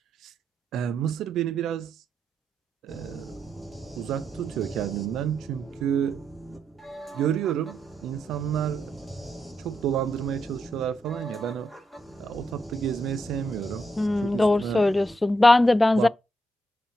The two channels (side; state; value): both; normal; correlation 0.81